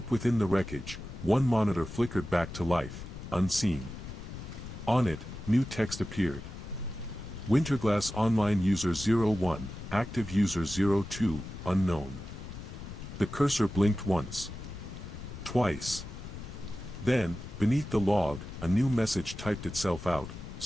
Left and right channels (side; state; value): left; noise; rumble, 11 dB below the sound